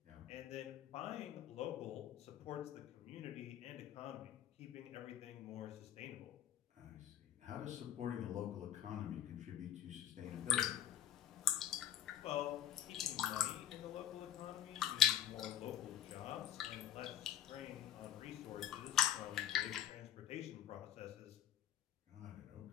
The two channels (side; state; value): right; quieter; 11.1 dB